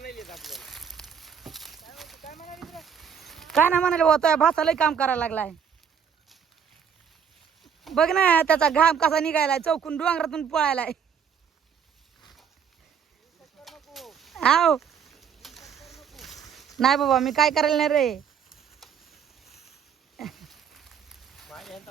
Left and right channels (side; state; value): left; quieter; 7.4 dB